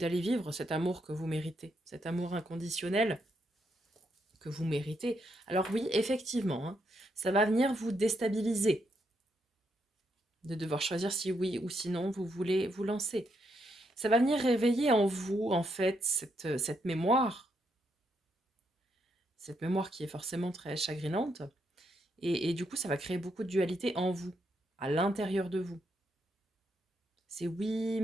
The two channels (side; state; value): both; normal; correlation 0.78